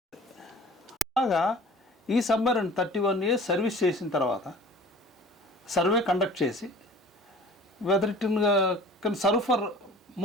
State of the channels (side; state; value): both; normal; correlation 0.45